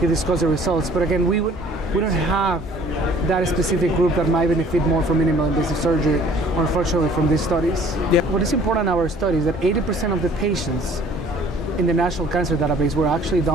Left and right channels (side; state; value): both; normal; correlation 0.54